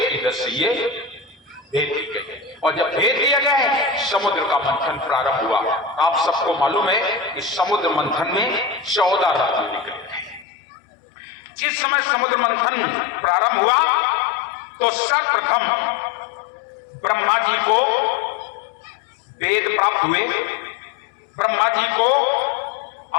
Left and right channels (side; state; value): right; drops out; at 10.5 s